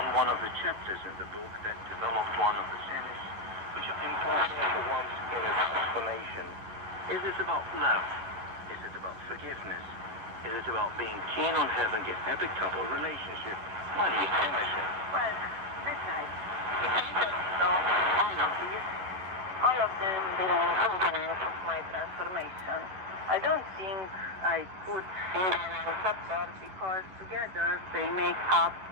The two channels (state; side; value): late; left; 11 ms